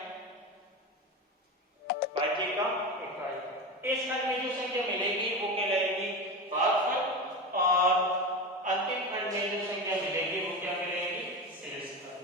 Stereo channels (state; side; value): normal; both; correlation 0.23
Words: भाज्य का इकाई। इस खंड में जो संख्या मिलेगी वो कहलाएगी भागफल और अंतिम खंड में जो संख्या मिलेगी वो क्या कहलाएगी? शेषफल।